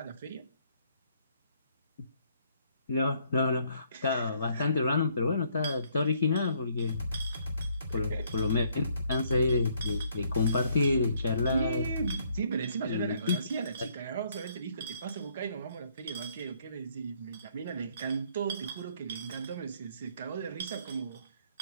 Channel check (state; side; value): inverted; both; correlation -0.67